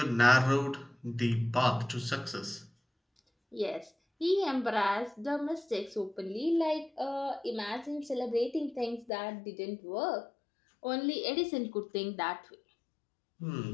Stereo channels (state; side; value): drops out; right; at 9.1 s